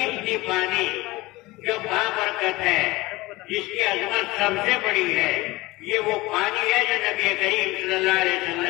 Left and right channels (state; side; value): quieter; right; 20.7 dB